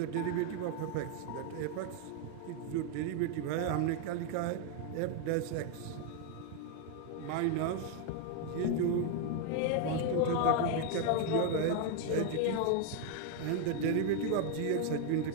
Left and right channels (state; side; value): different; both; correlation 0.01